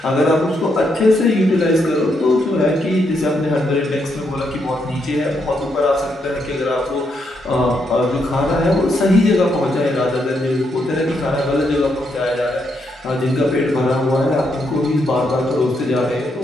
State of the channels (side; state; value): both; normal; correlation 0.78